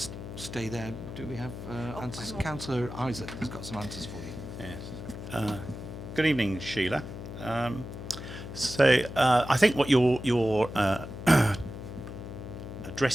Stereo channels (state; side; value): noise; left; hum, 10 dB below the sound